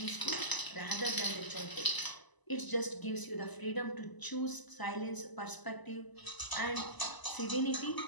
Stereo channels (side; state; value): right; late; 1.0 ms